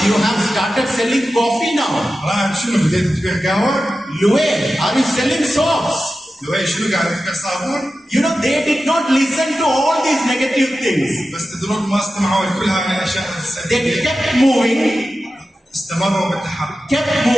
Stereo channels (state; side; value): normal; both; correlation 0.93